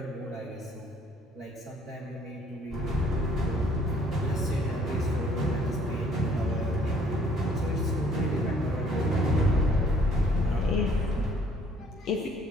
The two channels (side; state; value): both; normal; correlation 0.60